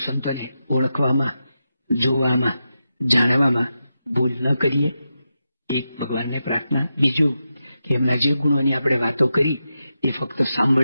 સંતોને ઓળખવામાં, જોવામાં, જાણવામાં ભૂલ ન કરીએ. એક ભગવાનને પ્રાર્થના. બીજું કે એમના જે ગુણોની આપણે વાતો કરી એ ફક્ત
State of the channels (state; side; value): inverted; both; correlation -0.89